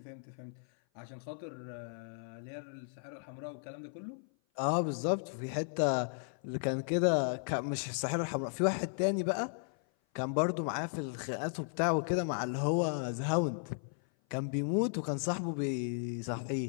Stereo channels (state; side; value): silent; right; 54 dB below the other